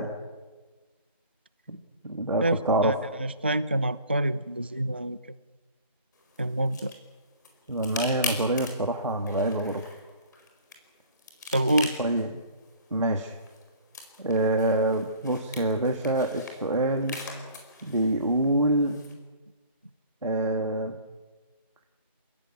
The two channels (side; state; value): both; inverted; correlation -0.48